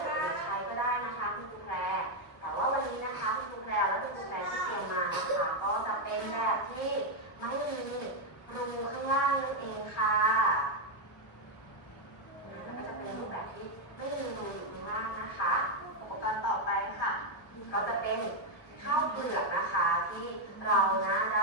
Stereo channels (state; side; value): late; right; 1.2 ms